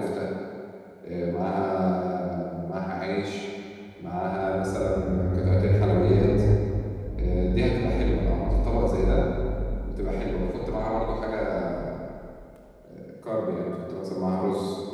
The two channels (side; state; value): both; identical; correlation 1.00